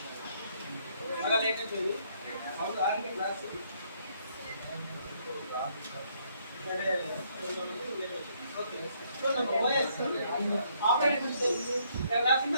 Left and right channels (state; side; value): inverted; both; correlation -0.70